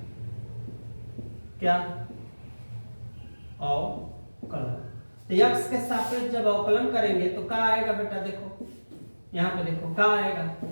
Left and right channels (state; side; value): inverted; both; correlation -1.00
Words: क्या अवकलन, तो x के सापेक्ष जब अवकलन करेंगे तो क्या आएगा बेटा, देखो यहाँ पे देखो क्या आएगा,